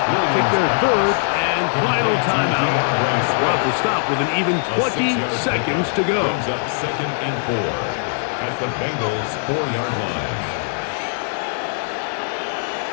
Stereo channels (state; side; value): silent; right; digital silence